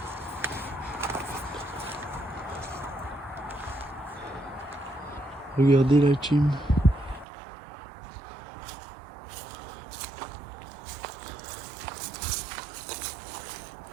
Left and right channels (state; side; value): drops out; left; at 7.2 s